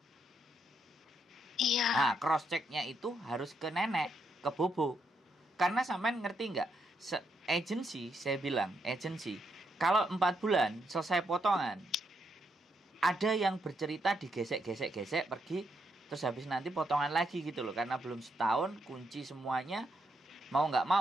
Iya. Nah, cross checknya itu harus ke nenek, ke bobo. Karena sampean ngerti nggak? Saya bilang agensi, kalau 4 bulan selesai potongan, ada yang bercerita digesek pergi, terus habis nanti potongan lagi gitu loh, karena belum setahun kunci semuanya, mau nggak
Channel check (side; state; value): both; normal; correlation 0.78